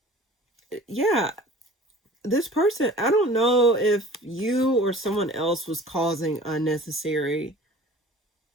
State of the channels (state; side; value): normal; both; correlation 0.44